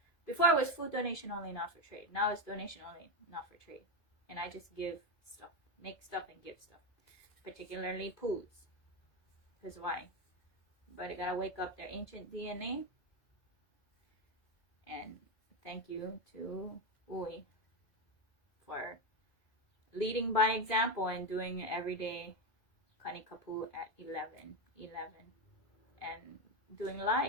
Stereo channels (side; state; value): right; late; 2.3 ms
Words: Before it was food donation only, not for trade. Now it's donation only, not for trade. And I just give stuff, make stuff and give stuff. Particularly poos. Because why? But I gotta wake up their ancient DNA. And thank you to U'i for leading by example and doing everyday Kanikapu at 11 and doing